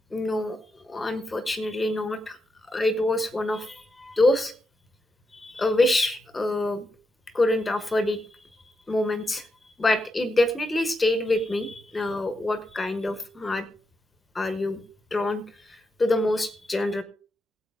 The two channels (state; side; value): normal; both; correlation 0.85